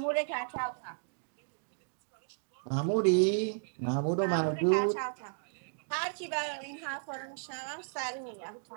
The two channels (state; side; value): silent; left; digital silence